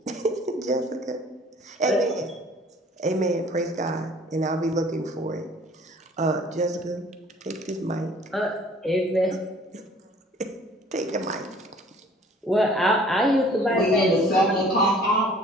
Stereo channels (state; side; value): normal; both; correlation 0.53